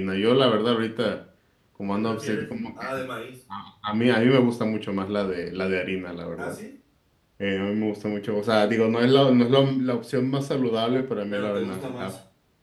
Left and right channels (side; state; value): both; identical; correlation 1.00